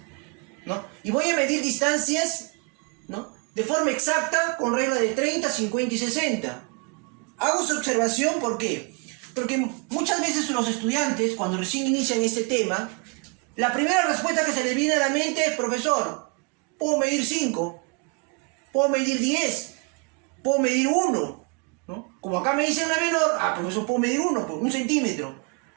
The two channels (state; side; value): quieter; left; 33.2 dB